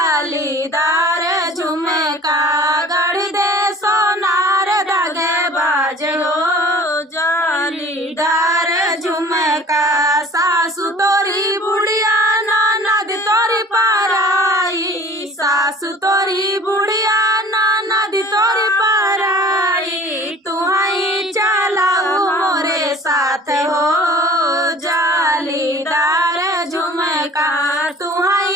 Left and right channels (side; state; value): both; normal; correlation 0.46